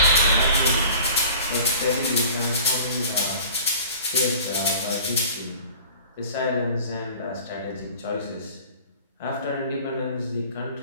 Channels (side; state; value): both; inverted; correlation -0.44